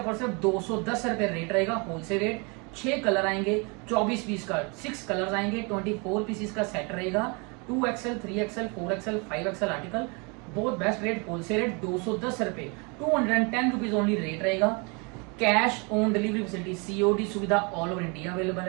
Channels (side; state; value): left; quieter; 31.7 dB